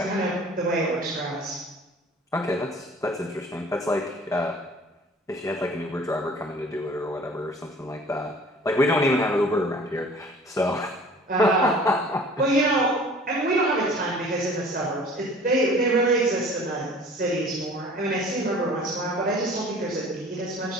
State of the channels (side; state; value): both; normal; correlation 0.48